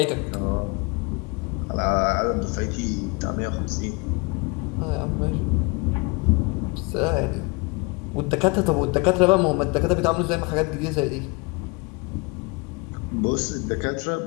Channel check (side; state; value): right; quieter; 28.1 dB